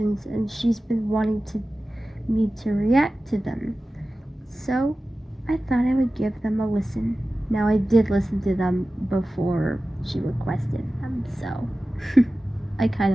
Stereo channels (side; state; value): both; normal; correlation 0.95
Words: and she's been wanting me to react to them. So I thought I would give them a listen. Now I did listen to them before she requested them, so I kind